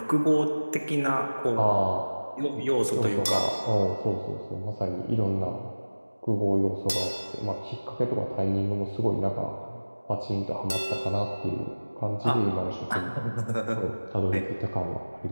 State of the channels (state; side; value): inverted; both; correlation -1.00